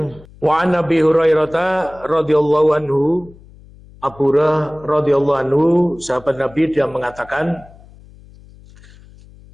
wa Nabi Hurairah radhiyallahu anhu, Abu Hurairah radhiyallahu anhu, sahabat Nabi, dia mengatakan,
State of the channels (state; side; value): noise; left; hum, 23 dB below the sound